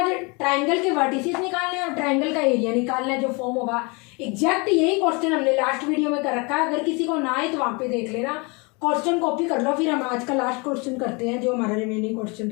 ट्राइंगल के वर्टिसेस निकालने हैं और ट्राइंगल का एरिया निकालना है जो फॉर्म होगा। एग्जैक्ट यही क्वेश्चन हमने लास्ट वीडियो में कर रखा है। अगर किसी को ना आए तो वहां पे देख लेना, क्वेश्चन कॉपी कर लो। फिर हम आज का लास्ट क्वेश्चन करते हैं जो हमारा रिमेनिंग क्वेश्चन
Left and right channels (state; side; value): quieter; right; 29.7 dB